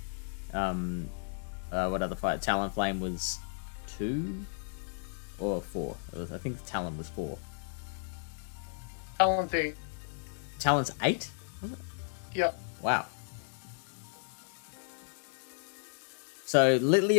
What other fire? Talonflame was 2 or 4. I think Talon was 4. Talon's 8. Talon's 8? Was it? Yep. Wow. So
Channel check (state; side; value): silent; right; digital silence